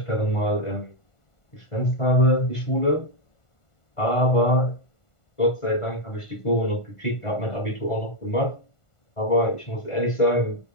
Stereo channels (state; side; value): late; right; 1.4 ms